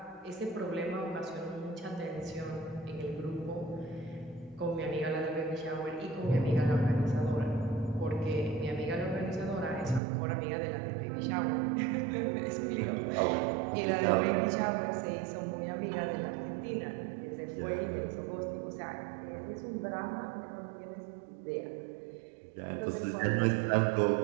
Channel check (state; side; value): drops out; left; at 10.0 s